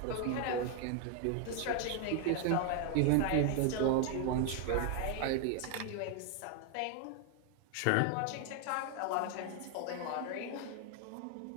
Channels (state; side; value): different; both; correlation 0.01